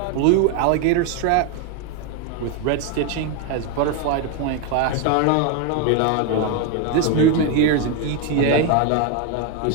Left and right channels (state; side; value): different; both; correlation 0.02